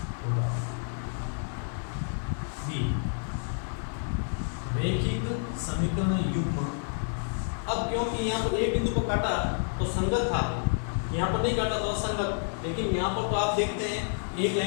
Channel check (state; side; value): silent; right; 58 dB below the other